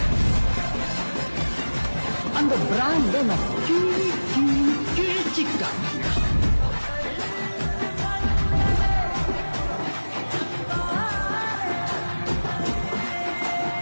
அந்த பிராண்ட் கிழிச்சிக்கா.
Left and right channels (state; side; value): inverted; both; correlation -1.00